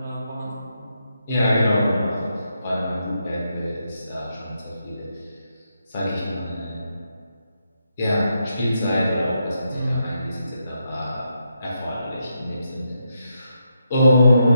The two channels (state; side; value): inverted; both; correlation -0.82